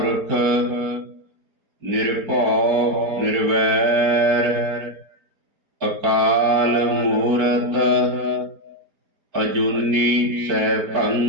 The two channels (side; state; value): left; late; 5.1 ms